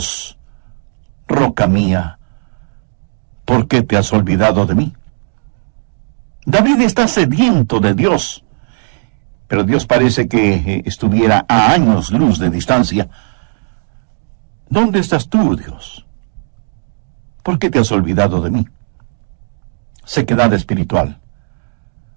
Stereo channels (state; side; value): silent; left; digital silence